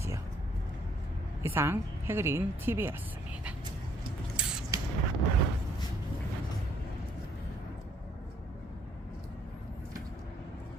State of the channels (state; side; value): normal; both; correlation 0.65